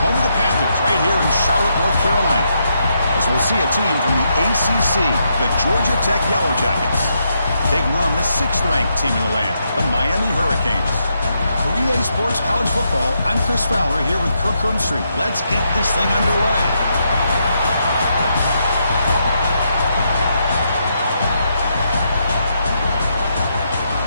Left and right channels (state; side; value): inverted; both; correlation -0.79